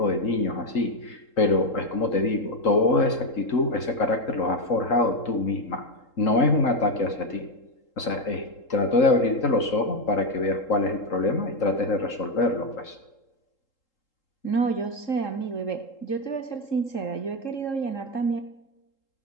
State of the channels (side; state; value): right; late; 3.8 ms